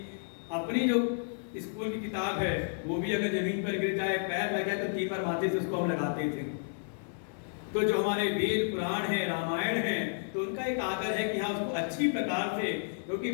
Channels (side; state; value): right; silent; digital silence